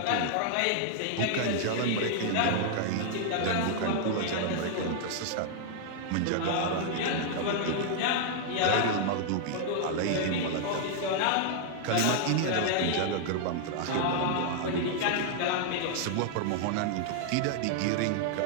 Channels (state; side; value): different; both; correlation -0.01